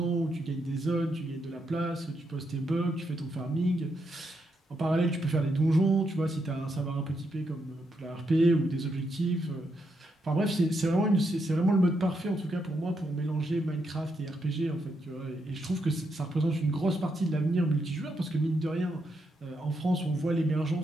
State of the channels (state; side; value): normal; both; correlation 0.80